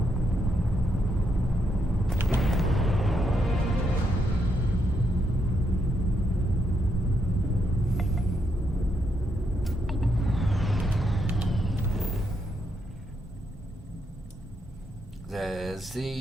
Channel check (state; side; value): normal; both; correlation 0.78